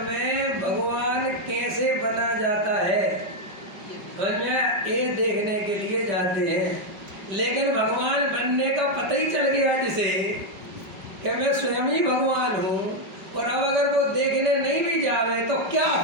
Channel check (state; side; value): late; left; 5.2 ms